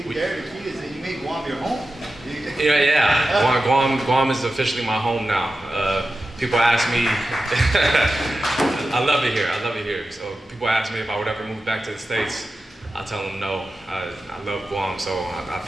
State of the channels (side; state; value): both; normal; correlation 0.93